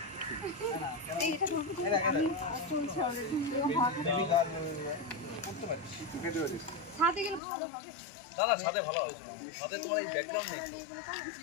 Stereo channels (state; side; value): drops out; right; at 7.4 s